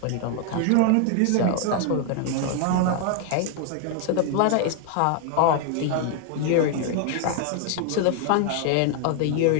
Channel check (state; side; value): different; both; correlation 0.00